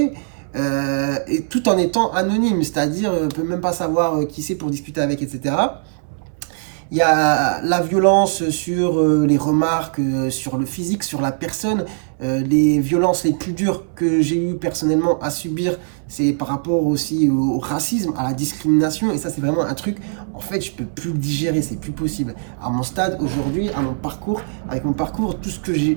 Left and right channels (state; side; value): silent; left; 64 dB below the other